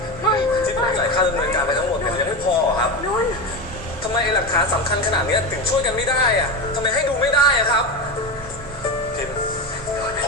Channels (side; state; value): both; normal; correlation 0.19